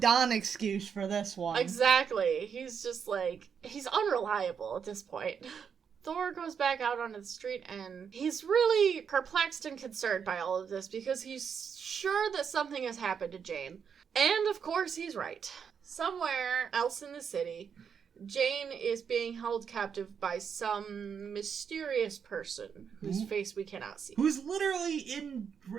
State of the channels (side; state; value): left; quieter; 7.0 dB